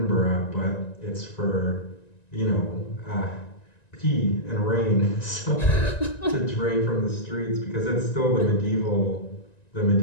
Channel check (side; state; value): right; late; 1.9 ms